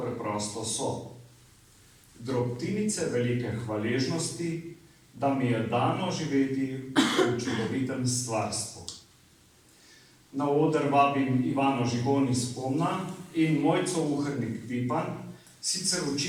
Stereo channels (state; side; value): identical; both; correlation 1.00